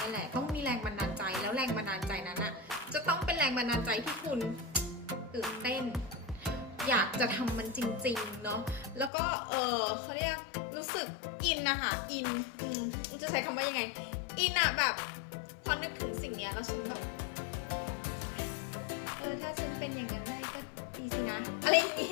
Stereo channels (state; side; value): drops out; right; at 9.1 s